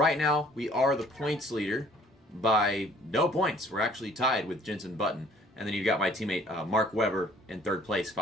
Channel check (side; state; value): both; normal; correlation 0.57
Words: now, we are the points leader by no points. We're actually tied with Jensen Button. And then you've got my teammate Mark Webber in 3rd place,